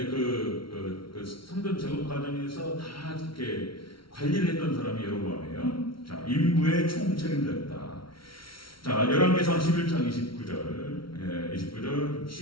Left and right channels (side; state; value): right; late; 0.74 ms